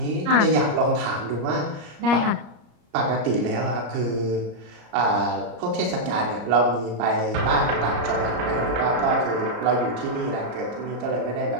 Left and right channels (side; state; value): left; late; 34 ms